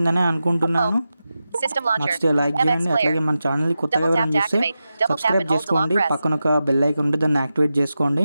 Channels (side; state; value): both; inverted; correlation -0.91